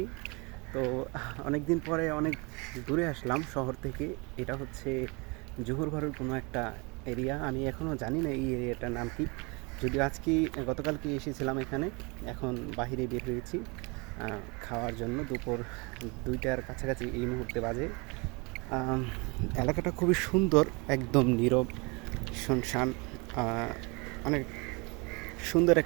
তো অনেক দিন পরে অনেক দূরে আসলাম শহর থেকে। এটা হচ্ছে জোহরবারুর কোনো একটা এরিয়া। আমি এখনও জানি না এই এরিয়াটার নাম কি। যদিও গতকালকে এসেছিলাম এখানে। এখন বাহিরে বের হয়েছি খাওয়ার জন্য। দুপুর 2টার কাছাকাছি এই মুহূর্তে বাজে। এলাকাটা খুবই সুন্দর, একদম নীরব, শুনশান, অনেক সুন্দর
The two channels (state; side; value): quieter; left; 28.8 dB